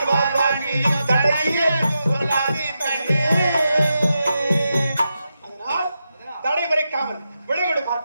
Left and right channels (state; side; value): inverted; both; correlation -0.87